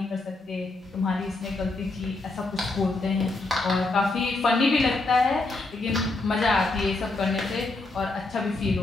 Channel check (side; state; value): right; quieter; 3.2 dB